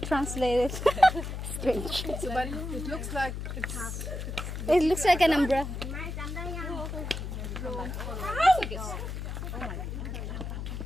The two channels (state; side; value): noise; left; hum, 5 dB below the sound